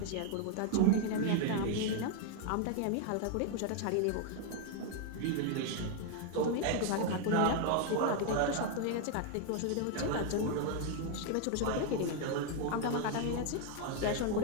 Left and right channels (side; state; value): both; different; correlation 0.00